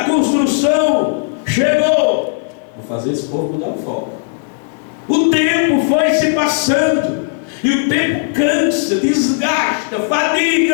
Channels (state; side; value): silent; right; 69 dB below the other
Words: construção chegou. Vou fazer esse povo mudar o foco. O tempo foi se passando. E o tempo cansa, desgasta,